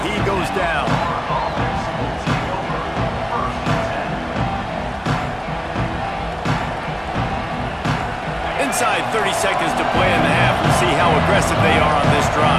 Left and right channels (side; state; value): both; identical; correlation 1.00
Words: He goes down. Inside 30 seconds to play in the half. We'll see how aggressive they are on this